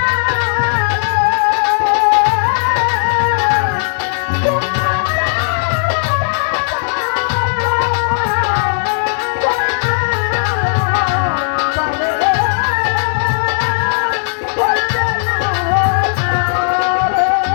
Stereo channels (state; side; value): silent; right; digital silence